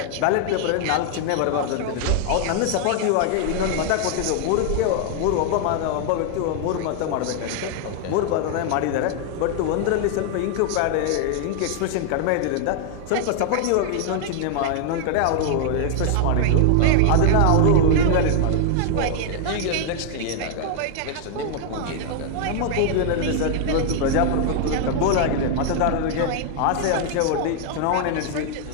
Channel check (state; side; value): different; both; correlation 0.00